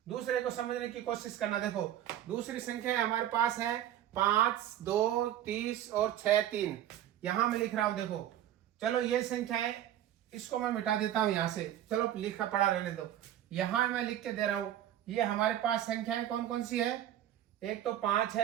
दूसरे को समझने की कोशिश करना। देखो दूसरी संख्या हमारे पास है 5 2 30 और 6 3। यहां मैं लिख रहा हूं, देखो चलो ये संख्या है, इसको मैं मिटा देता हूं यहां से, चलो लिखा पड़ा रहने दो। यहां मैं लिख के दे रहा हूं, ये हमारे पास संख्याएं कौन कौन सी है? एक तो 5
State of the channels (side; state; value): left; quieter; 11.7 dB